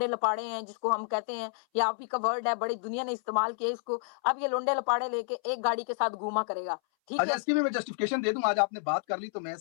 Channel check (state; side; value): silent; right; 58 dB below the other